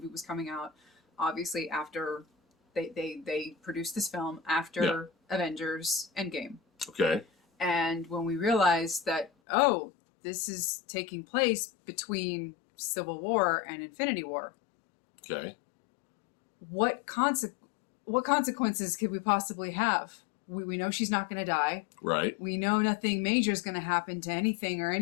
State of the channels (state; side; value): drops out; right; at 9.3 s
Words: was coming out, obviously, after they produced this film, after Avengers Endgame. Okay. And when we realized that, this is taking place between Civil War and Infinity War. Okay. What consequences could we possibly have? We know she's not going to die. Right. We know nothing major is going to happen to anything or